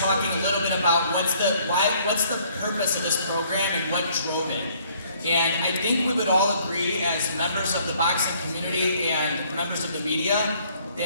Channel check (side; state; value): both; inverted; correlation -0.61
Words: a little bit about what's the purpose of this program and what drove it. And I think we would all agree as members of the boxing community and members of the media